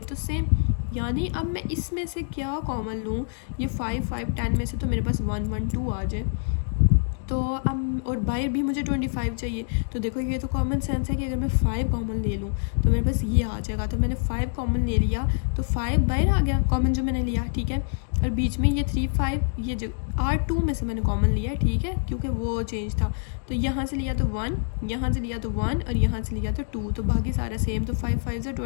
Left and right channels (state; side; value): silent; right; digital silence